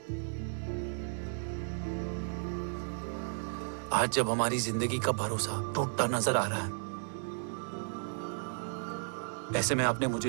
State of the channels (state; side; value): silent; left; digital silence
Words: जब हमारी जिंदगी का भरोसा टूटता नजर आ रहा है, ऐसे में आपने